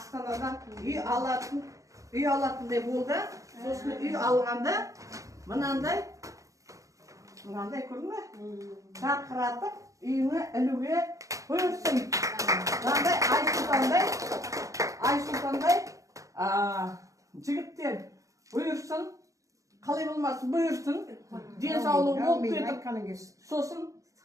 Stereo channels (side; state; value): left; late; 0.16 ms